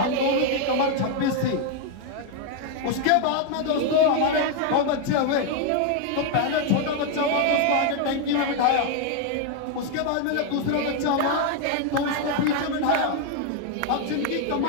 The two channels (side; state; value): both; different; correlation 0.01